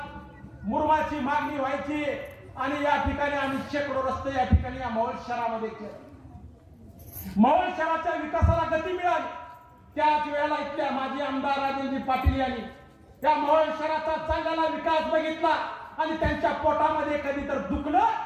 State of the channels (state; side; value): identical; both; correlation 1.00